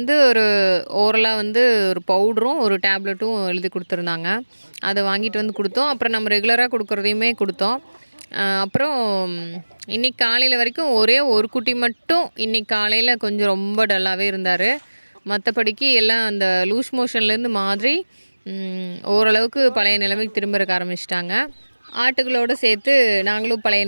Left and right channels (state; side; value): inverted; both; correlation -1.00